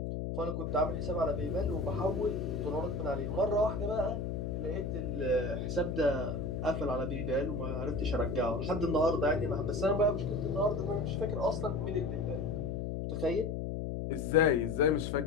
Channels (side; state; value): left; noise; hum, 3 dB below the sound